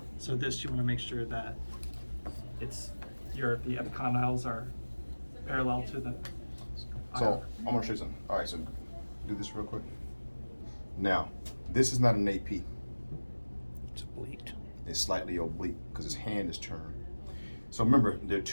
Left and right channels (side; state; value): both; inverted; correlation -1.00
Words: So this, you want to make sure that it's the epicondyles are parallel to the. So I'm gonna show you something. All right, so do this real quick. Now, this is not an AP. It's oblique. It's slightly oblique because his hand is turned. So remember, there are